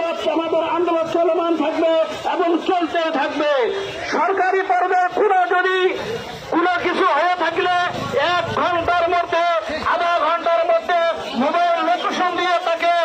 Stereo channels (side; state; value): both; identical; correlation 1.00